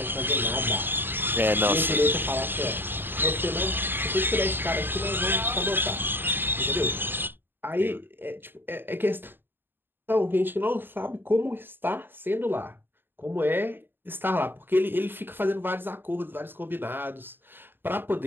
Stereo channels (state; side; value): late; left; 0.098 ms